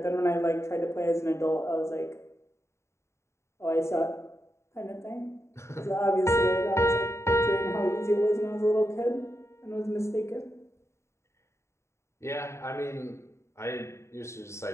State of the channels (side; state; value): right; late; 0.13 ms